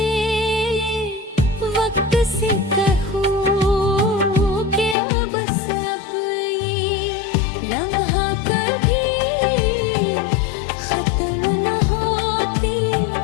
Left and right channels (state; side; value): drops out; right; at 5.0 s